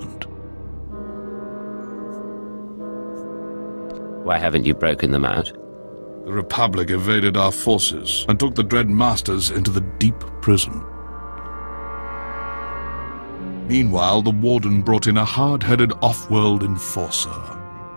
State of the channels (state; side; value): inverted; both; correlation -1.00